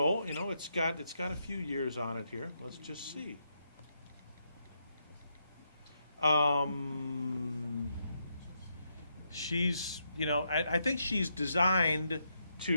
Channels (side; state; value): both; inverted; correlation -0.80